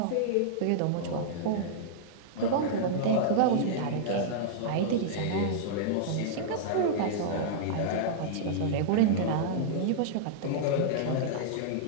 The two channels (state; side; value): different; both; correlation -0.02